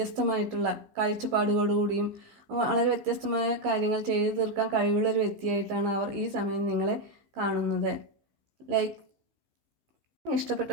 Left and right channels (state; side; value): late; left; 15 ms